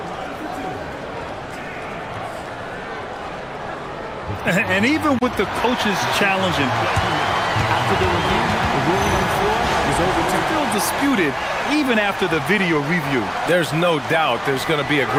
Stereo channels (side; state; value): both; identical; correlation 1.00